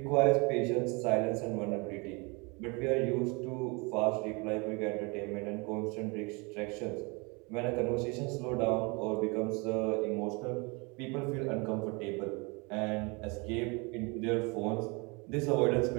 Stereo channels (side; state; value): left; quieter; 29.5 dB